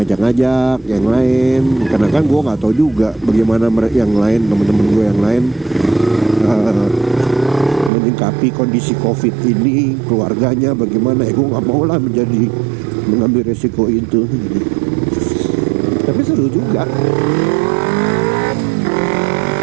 ngajak-ngajak yang lain, karena kan gue nggak tahu juga bagaimana yang lain, teman-teman gue yang lain menyikapi kondisi COVID ini, keluarganya bagaimana. Gue nggak mau lah mengambil resiko itu. Tapi seru juga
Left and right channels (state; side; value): drops out; left; at 7.9 s